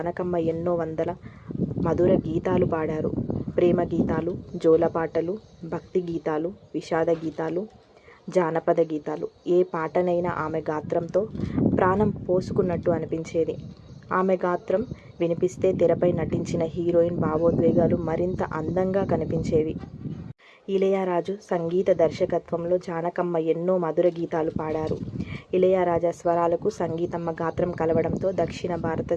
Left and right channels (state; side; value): identical; both; correlation 1.00